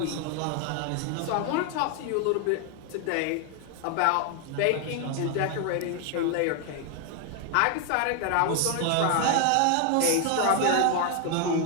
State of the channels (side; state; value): both; different; correlation 0.00